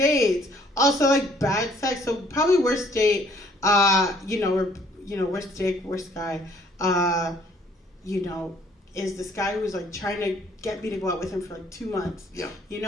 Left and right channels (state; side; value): normal; both; correlation 0.61